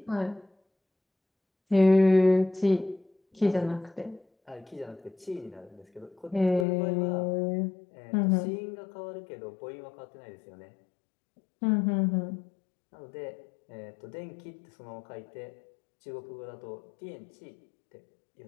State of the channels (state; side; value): drops out; right; at 6.7 s